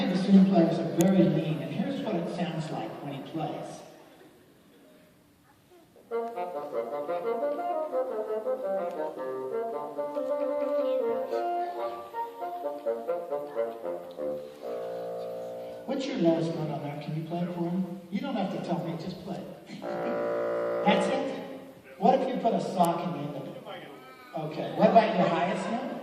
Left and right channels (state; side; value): identical; both; correlation 1.00